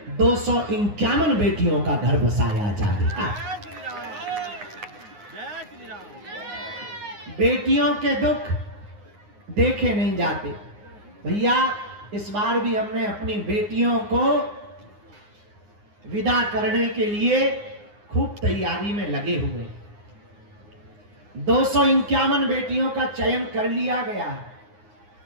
251 बेटियों का घर बसाया जाएगा। बेटियों के दुख देखे नहीं जाते भैया। इस बार भी हमने अपनी बेटियों को विदा करने के लिए खूब तैयारी में लगे हुए। 251 बेटियों का चयन कर लिया गया।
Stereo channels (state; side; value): late; left; 9.7 ms